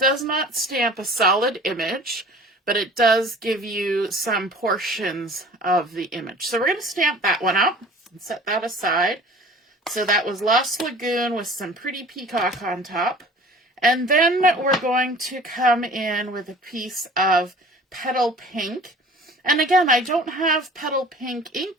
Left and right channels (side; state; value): both; normal; correlation 0.46